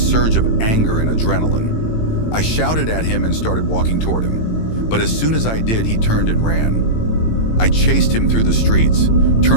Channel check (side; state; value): right; late; 18 ms